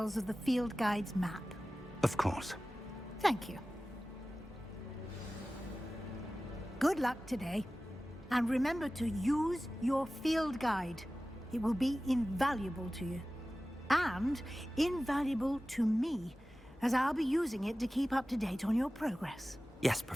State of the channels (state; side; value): normal; both; correlation 0.96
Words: of the field guide's map? Of course. Thank you. Good luck today. And remember to use your field guide. It will be invaluable to you. And invaluable to me, as I'll be using it to keep up to date on your progress. Yes,